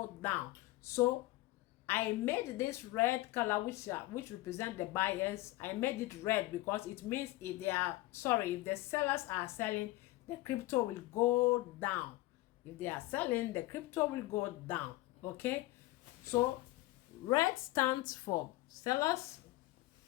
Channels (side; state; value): right; quieter; 18.2 dB